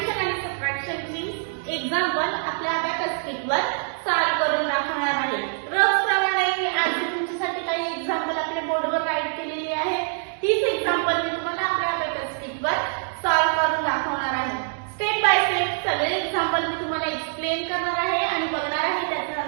आणि सबट्रॅक्शनची एक्झाम्पल आपल्या अबॅकस शीटवर सॉल्व्ह करून दाखवणार आहे. रोजप्रमाणे मी आज तुमच्यासाठी काही एक्झाम्पल आपल्या बोर्डवर राईट केलेली आहे. तीच एक्झाम्पल मी तुम्हाला आपल्या अबॅकस शीटवर सॉल्व्ह करून दाखवणार आहे. स्टेप बाय स्टेप सगळे एक्झाम्पल मी तुम्हाला एक्सप्लेन करणार आहे आणि बघणार आहे त्याचं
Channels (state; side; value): silent; left; 62 dB below the other